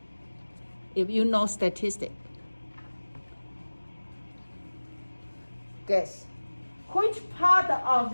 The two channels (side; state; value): both; inverted; correlation -1.00